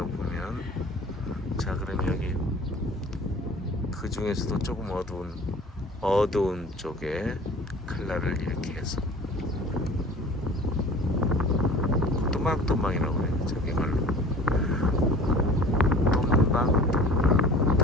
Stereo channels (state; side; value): normal; both; correlation 0.45